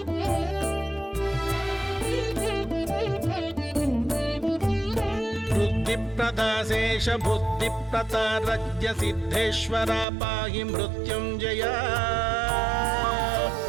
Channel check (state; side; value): drops out; left; at 10.1 s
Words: बुद्धिप्रदाशेष बुद्धिप्रतारज्ञ सिद्धेश्वरा पाहि मृत्युञ्जय